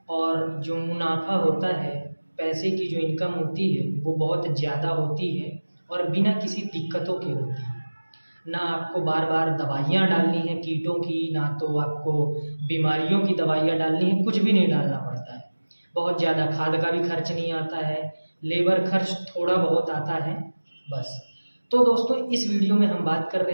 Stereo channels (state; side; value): inverted; both; correlation -1.00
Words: और जो मुनाफा होता है, पैसे की जो इनकम होती है वो बहुत ज़्यादा होती है और बिना किसी दिक्कतों के होती है। ना आपको बार बार दवाइयाँ डालनी है कीटों की, ना तो आपको बीमारियों की दवाइयाँ डालनी है, कुछ भी नहीं डालना पड़ता है। बहुत ज़्यादा खाद का भी खर्च नहीं आता है, लेबर खर्च थोड़ा बहुत आता है, बस। तो दोस्तों, इस वीडियो में हम बात कर